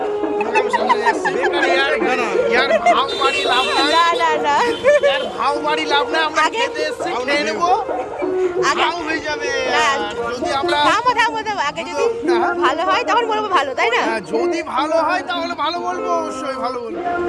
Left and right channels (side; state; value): both; identical; correlation 1.00